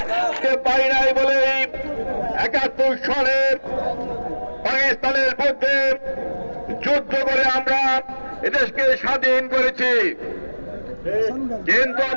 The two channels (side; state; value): both; inverted; correlation -1.00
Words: পাই নাই বলে ৭১ সালে পাকিস্তানের মধ্যে যুদ্ধ করে আমরা এদেশকে স্বাধীন করেছি, কিন্তু